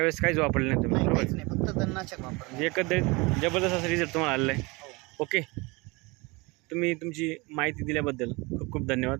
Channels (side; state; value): left; quieter; 25.6 dB